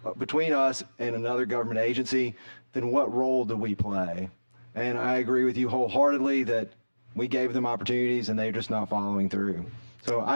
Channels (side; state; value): both; inverted; correlation -1.00